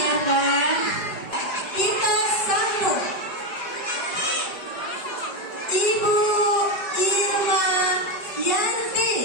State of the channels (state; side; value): late; right; 5.2 ms